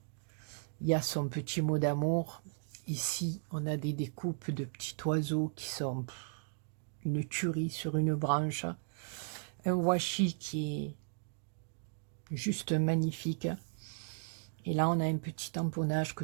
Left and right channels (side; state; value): left; silent; digital silence